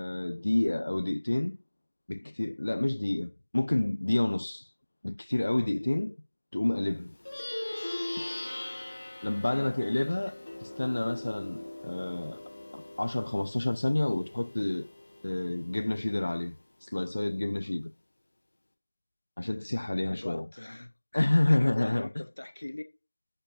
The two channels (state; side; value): inverted; both; correlation -1.00